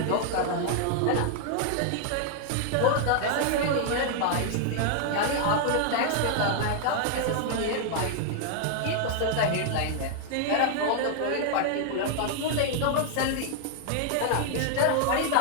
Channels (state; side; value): different; both; correlation 0.00